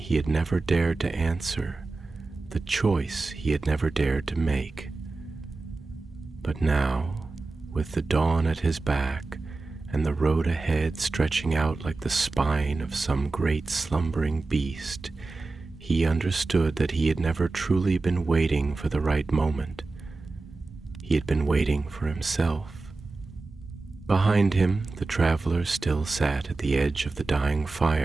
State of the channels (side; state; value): left; quieter; 3.5 dB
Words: had never dared to answer, the choice he had never dared to make. But now, with the dawn at his back, and the road ahead stretching out like the spine of some great slumbering beast, he understood that he had never truly been waiting for the right moment. He had been waiting for himself. Behind him, the traveler still sat at the edge of the dying